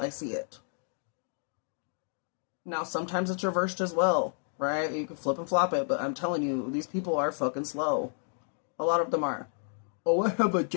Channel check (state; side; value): silent; right; digital silence